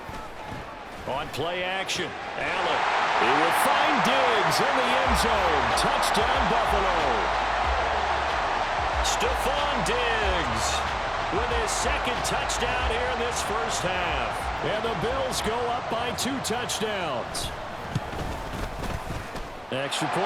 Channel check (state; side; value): identical; both; correlation 1.00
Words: On play action, Allen. He will find Diggs in the end zone. Touchdown, Buffalo. Stephon Diggs with his second touchdown here in this first half. And the Bills go up by 2 touchdowns. Extra